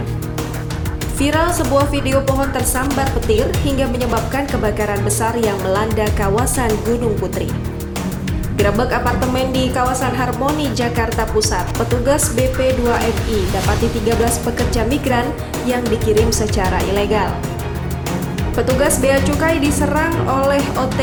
Viral sebuah video pohon tersambar petir hingga menyebabkan kebakaran besar yang melanda kawasan Gunung Putri. Gerebek apartemen di kawasan Harmoni, Jakarta Pusat, petugas BP2MI dapati 13 pekerja migran yang dikirim secara ilegal. Petugas Bea Cukai diserang oleh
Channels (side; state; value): both; identical; correlation 1.00